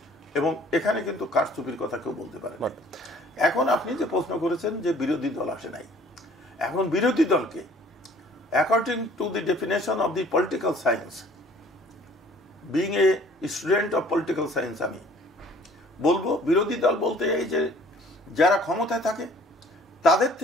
এবং এখানে কিন্তু কারচুপির কথা কেউ বলতে পারে না। এখন আপনি যে প্রশ্ন করেছেন যে বিরোধী দল আসে নাই, এখন বিরোধী দলকে according to the definition of the political science, being a student of political science, আমি বলবো বিরোধী দল বলতে এই যে যারা ক্ষমতায় থাকে তাদের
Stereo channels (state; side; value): normal; both; correlation 0.55